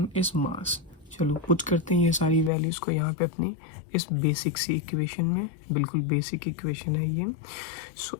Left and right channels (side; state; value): right; drops out; at 2.5 s